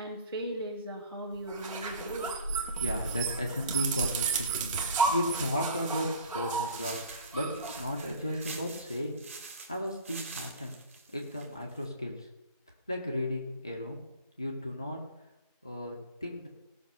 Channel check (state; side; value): inverted; both; correlation -0.39